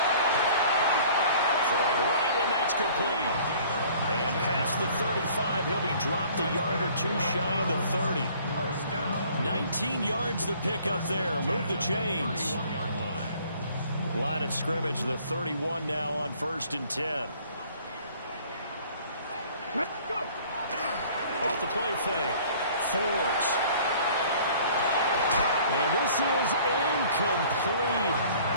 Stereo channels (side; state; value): both; inverted; correlation -0.53